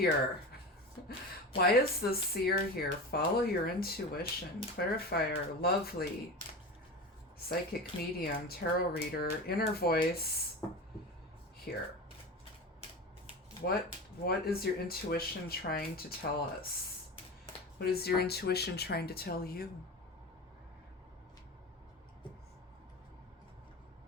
Why is the seer here? Follow your intuition. Clarifier, lovely. Psychic medium, tarot reader, inner voice. Here. What is your intuition trying to tell us? What is your intuition trying to tell you?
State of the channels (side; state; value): both; normal; correlation 0.28